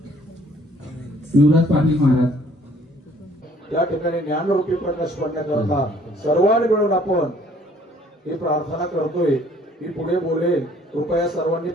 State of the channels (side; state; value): both; normal; correlation 0.59